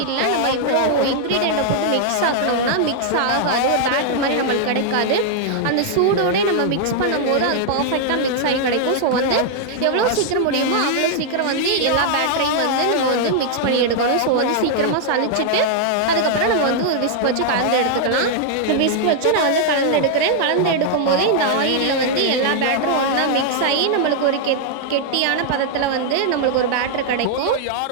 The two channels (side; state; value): both; different; correlation -0.01